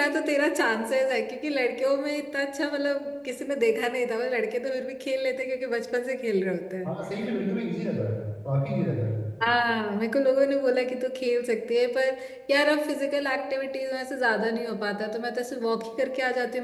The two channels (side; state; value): both; identical; correlation 1.00